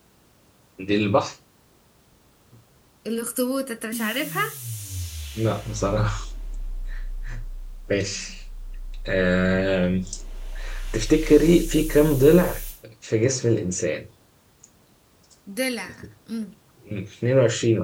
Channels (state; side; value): identical; both; correlation 1.00